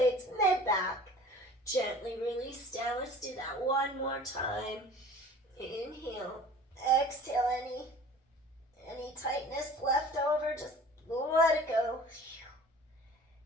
mid-back. Gently release down. Let's do that one more time. Inhale, exhale, any tightness left over, just let it go.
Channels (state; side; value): normal; both; correlation 0.45